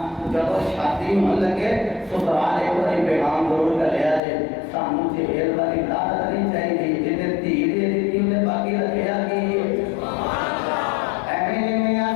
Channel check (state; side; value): drops out; right; at 4.2 s